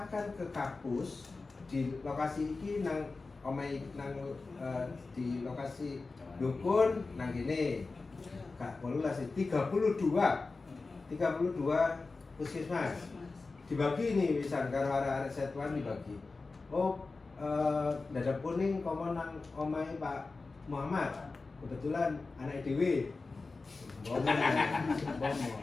ke kapus di lokasi iki nang omai nang di lokasi dukun nang gini. Kak, polulah sih 32 puskesmas dibagi nih misal karo arek Setwan dibagi. Oh, dada kuning komo nang omai Pak Muhammad. Kebetulan anak dewe.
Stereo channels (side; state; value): right; quieter; 3.8 dB